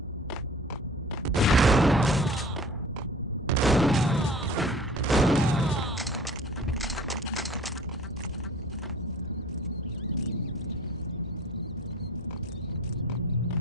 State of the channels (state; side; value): normal; both; correlation 0.46